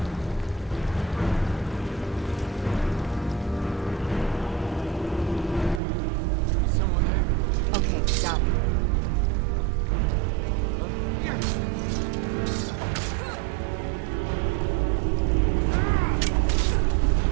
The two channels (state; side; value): drops out; left; at 5.8 s